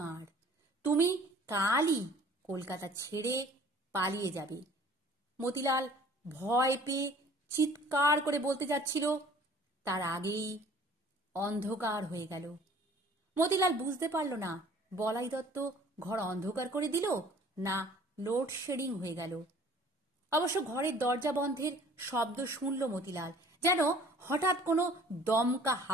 তুমি কালই কলকাতা ছেড়ে পালিয়ে যাবে। মতিলাল ভয় পেয়ে চিৎকার করে বলতে যাচ্ছিল, তার আগেই অন্ধকার হয়ে গেল। মতিলাল বুঝতে পারল না বলাই দত্ত ঘর অন্ধকার করে দিল না লোডশেডিং হয়ে গেল। অবশ্য ঘরের দরজা বন্ধের শব্দ শুনল মতিলাল, যেন হঠাৎ কোনো দমকা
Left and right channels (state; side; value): normal; both; correlation 0.52